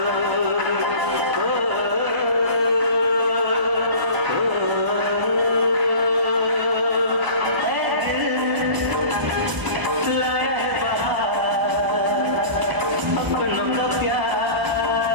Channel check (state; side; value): late; left; 1.0 ms